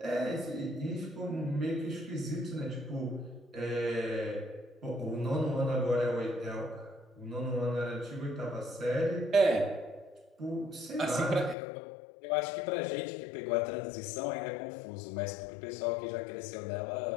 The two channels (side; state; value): right; drops out; at 11.6 s